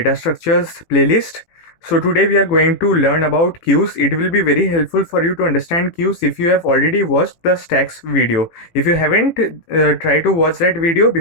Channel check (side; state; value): right; late; 18 ms